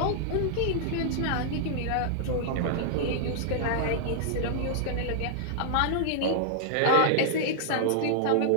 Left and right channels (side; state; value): both; different; correlation -0.01